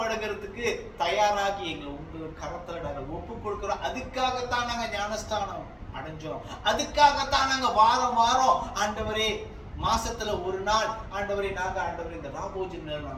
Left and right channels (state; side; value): identical; both; correlation 1.00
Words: தயாராகி எங்களை உங்க கரத்துல நாங்கள் ஒப்பு கொடுக்கிறோம். அதுக்காகத்தான் நாங்க ஞானஸ்தானம் அடைஞ்சோம். அதுக்காகத்தான் நாங்க வாரம் ஆண்டவரே மாசத்துல ஒரு நாள் ஆண்டவரே நாங்க ஆண்டவரே இந்த ராபோஜன்ல